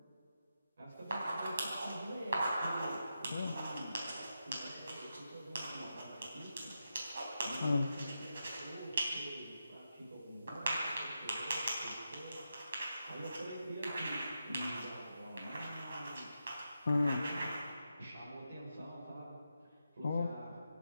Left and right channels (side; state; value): both; inverted; correlation -0.87